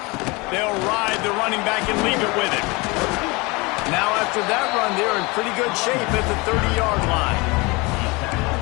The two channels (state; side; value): quieter; right; 25.7 dB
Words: They'll ride the running back and leave it with him. Now after that run, they're in pretty good shape at the 30-yard line.